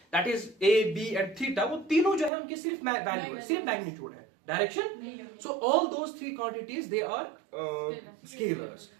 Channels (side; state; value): left; drops out; at 2.3 s